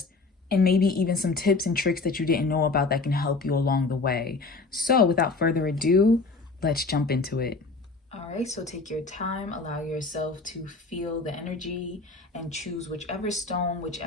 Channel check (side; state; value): right; quieter; 3.8 dB